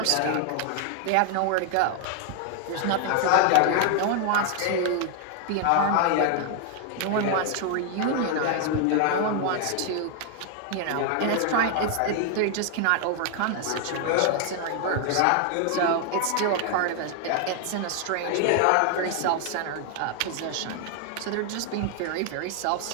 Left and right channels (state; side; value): different; both; correlation 0.00